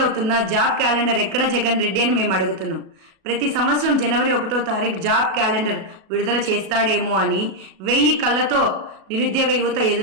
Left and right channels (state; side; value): late; left; 37 ms